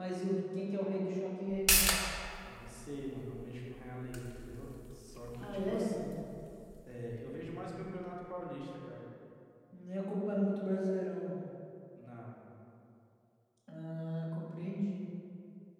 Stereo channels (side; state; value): both; identical; correlation 1.00